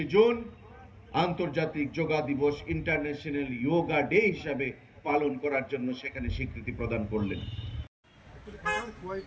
জুন আন্তর্জাতিক যোগা দিবস, ইন্টারন্যাশনাল যোগা ডে হিসাবে পালন করার জন্য সেখানে স্বীকৃতি প্রদান করলেন।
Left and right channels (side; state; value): both; identical; correlation 1.00